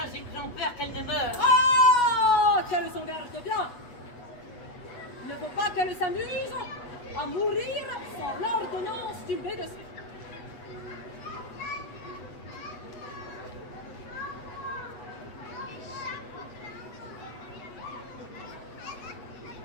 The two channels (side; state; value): right; late; 8.3 ms